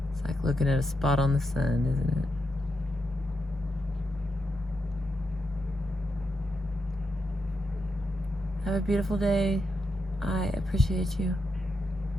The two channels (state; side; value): normal; both; correlation 0.84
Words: It's like looking at a spot on the sun, isn't it? Have a beautiful day. I appreciate you.